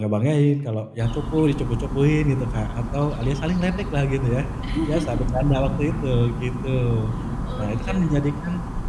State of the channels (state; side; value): identical; both; correlation 1.00